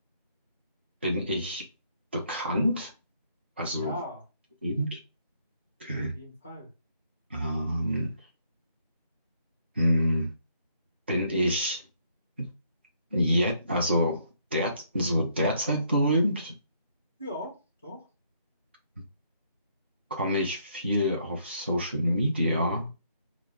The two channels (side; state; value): both; inverted; correlation -0.70